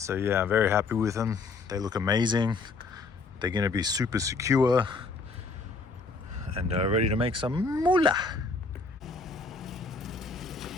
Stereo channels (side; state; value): right; quieter; 4.1 dB